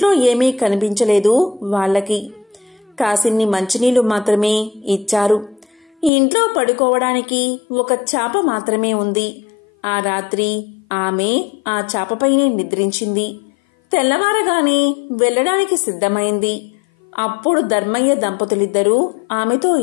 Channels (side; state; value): right; drops out; at 6.1 s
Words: ఏమీ కనిపించలేదు. వాళ్ళకి కాసిన్ని మంచినీళ్లు మాత్రమే ఇచ్చారు. ఇంట్లో పడుకోవడానికి ఒక చాప మాత్రమే ఉంది. ఆ రాత్రి ఆమె ఆ చాపపైనే నిద్రించింది. తెల్లవారగానే వెళ్లడానికి సిద్ధమైంది. అప్పుడు ధర్మయ్య దంపతులిద్దరూ ఆమెతో